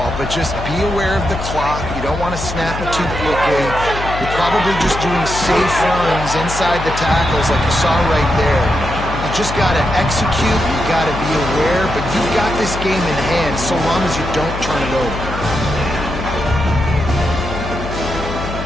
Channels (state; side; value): noise; left; hum, 7 dB below the sound